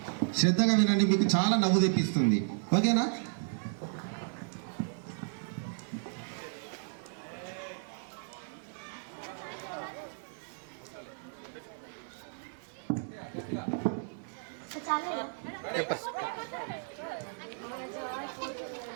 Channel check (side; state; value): left; silent; digital silence